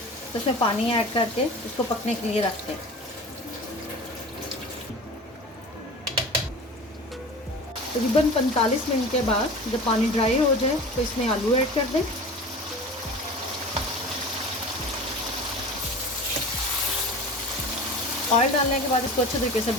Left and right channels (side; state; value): both; normal; correlation 0.36